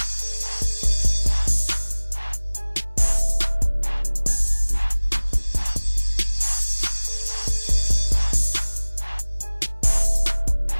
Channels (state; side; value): inverted; both; correlation -1.00